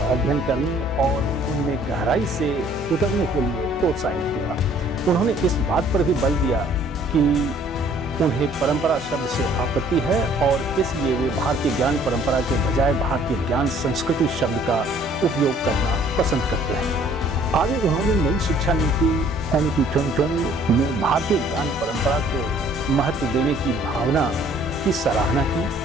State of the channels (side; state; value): both; normal; correlation 0.57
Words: अध्ययन करने और उनमें गहराई से उतरने के लिए प्रोत्साहित किया। उन्होंने इस बात पर भी बल दिया कि उन्हें परंपरा शब्द से आपत्ति है और इसलिए वे भारतीय ज्ञान परंपरा के बजाय भारतीय ज्ञान संस्कृति शब्द का उपयोग करना पसंद करते हैं। आगे उन्होंने नई शिक्षा नीति NEP 2020 में भारतीय ज्ञान परंपरा को महत्व देने की भावना की सराहना की,